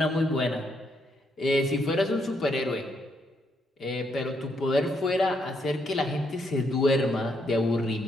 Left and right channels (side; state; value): both; normal; correlation 0.75